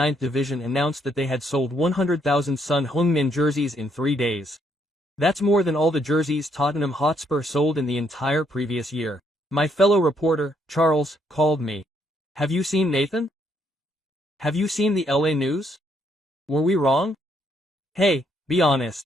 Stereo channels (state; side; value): normal; both; correlation 0.72